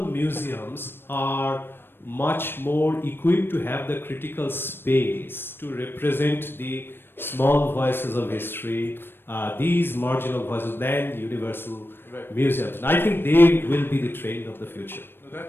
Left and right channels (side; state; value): right; late; 0.10 ms